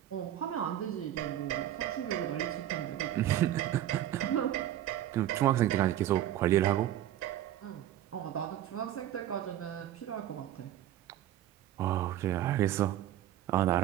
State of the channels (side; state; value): left; quieter; 12.4 dB